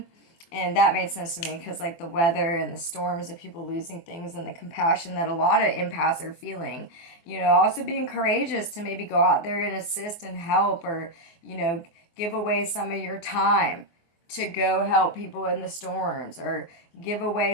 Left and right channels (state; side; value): late; right; 24 ms